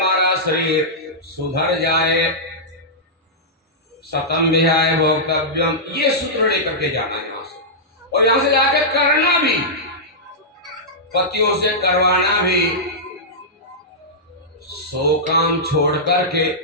शरीर सुधर जाए। शतम विहाय भोक्तव्यम, ये सूत्र लेकर के जाना है यहां से, और यहां से जाकर करना भी, पतियों से करवाना भी। 100 काम छोड़ करके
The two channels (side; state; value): both; normal; correlation -0.12